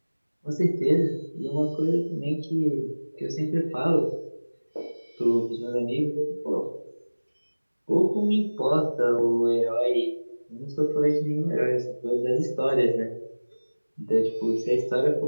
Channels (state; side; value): inverted; both; correlation -1.00